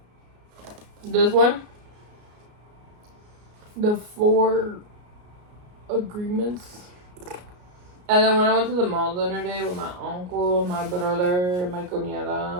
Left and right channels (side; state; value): left; late; 33 ms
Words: this one, The 4 Agreements. And then when I went to the mall the other day with my uncle, my brother, my